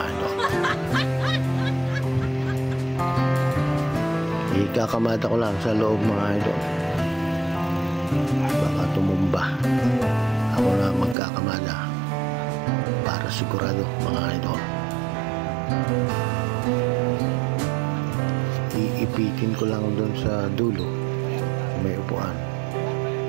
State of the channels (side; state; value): left; drops out; at 11.2 s